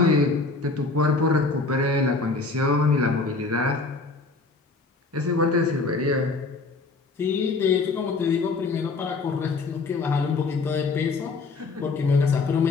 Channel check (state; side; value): quieter; right; 3.9 dB